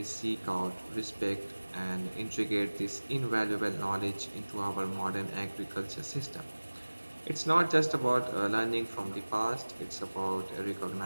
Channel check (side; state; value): both; inverted; correlation -1.00